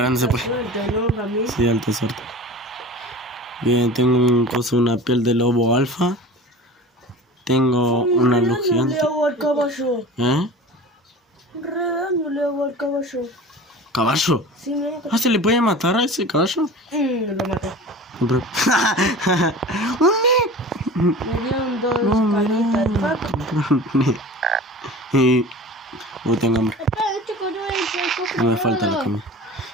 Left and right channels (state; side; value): normal; both; correlation 0.37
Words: no se puede. Suerte, ¿no, Ramí? Sí, alta suerte. Bien, tengo una piel de lobo alfa. Tengo una luz Le gigante. hago al caballo. ¿Eh? Redando le hago al caballo. ¿Caballo? Sí, me hago. Ah, ¿se le puede matar a ese caballo? Lo maté. Pero- Me dieron dos canitas de paco. Uy, tengo hambre. Espera, chico, yo voy a ir por el cofre. No me falta la comida.